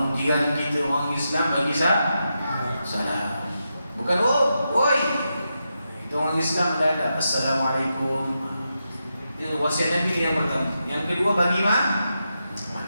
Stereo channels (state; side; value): inverted; both; correlation -0.86